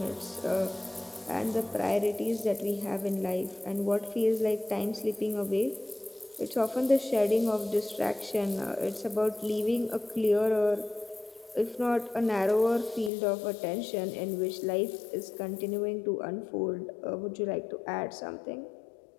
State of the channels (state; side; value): drops out; right; at 13.1 s